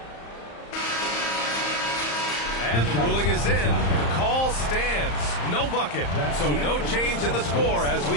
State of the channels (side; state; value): right; late; 34 ms